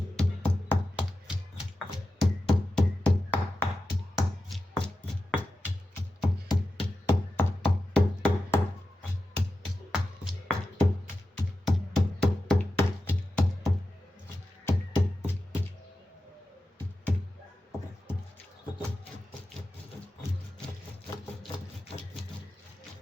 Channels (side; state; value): both; normal; correlation 0.91